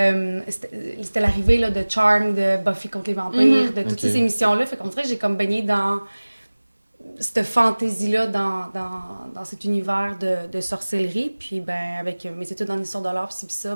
l'arrivée là, de Charmed, de Buffy contre les vampires, de toutes ces émissions-là. Fait qu'on dirait que j'ai comme baigné dans cette fantaisie-là, dans cet univers de sorcellerie. Puis, ben, avec mes études en histoire de l'art, puis ça,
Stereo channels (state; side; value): inverted; both; correlation -1.00